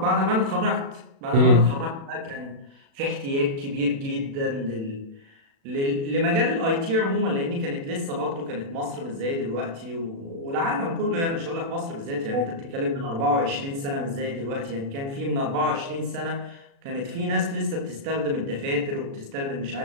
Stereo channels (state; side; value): late; left; 36 ms